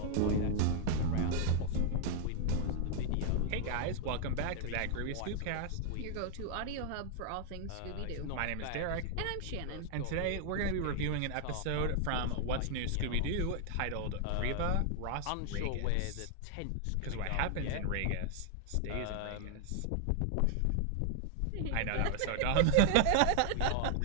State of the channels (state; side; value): different; both; correlation 0.00